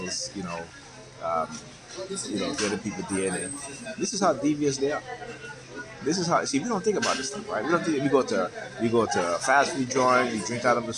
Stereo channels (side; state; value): both; identical; correlation 1.00